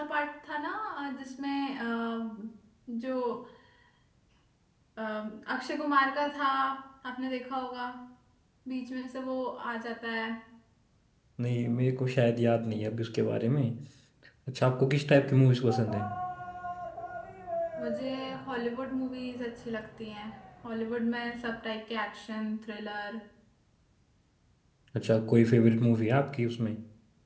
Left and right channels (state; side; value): identical; both; correlation 1.00